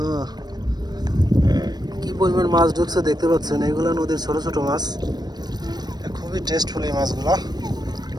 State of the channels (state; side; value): late; left; 0.19 ms